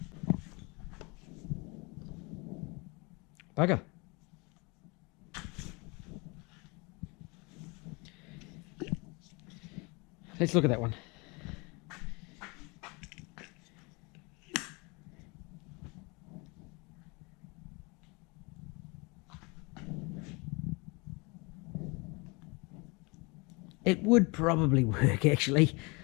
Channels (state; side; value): quieter; right; 28.5 dB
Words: Bugger. Let's look at that one. It would probably work, actually.